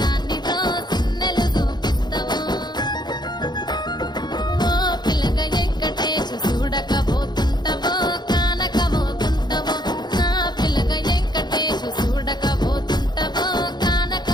దాన్నితో చిన్నలు చూపిస్తావో ఓ పిల్లగా వెంకటేశు చూడకపోతుంటావో కానకపోతుంటావో నా పిల్లగా వెంకటేశు చూడకపోతుంటావో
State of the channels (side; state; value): right; late; 0.21 ms